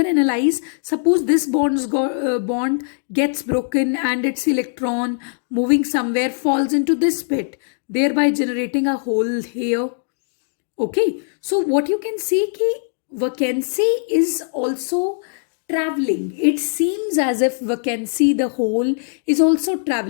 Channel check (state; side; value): silent; right; digital silence